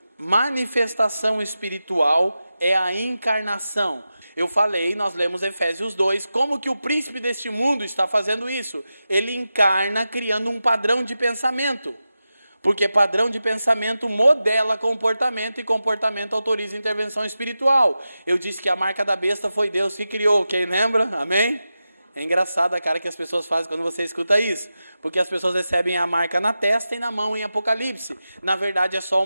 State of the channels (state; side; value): inverted; both; correlation -0.92